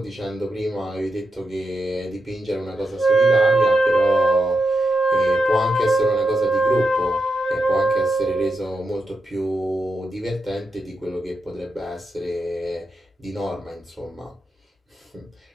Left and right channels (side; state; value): both; normal; correlation 0.86